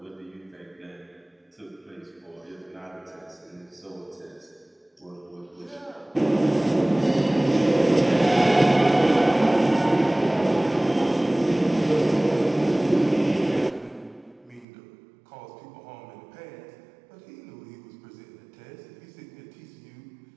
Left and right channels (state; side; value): drops out; left; at 14.7 s